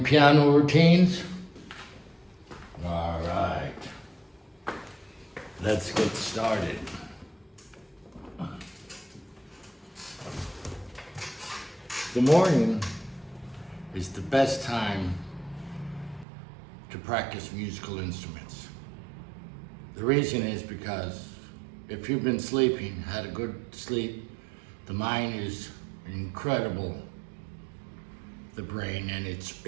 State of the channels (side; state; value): left; drops out; at 16.2 s